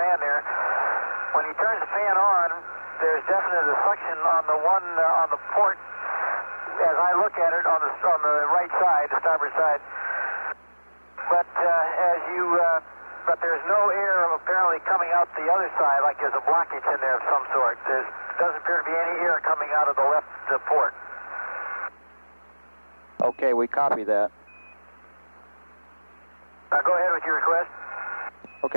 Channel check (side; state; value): both; inverted; correlation -1.00